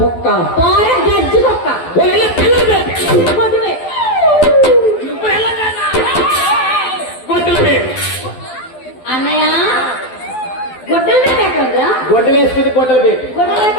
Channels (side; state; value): right; late; 12 ms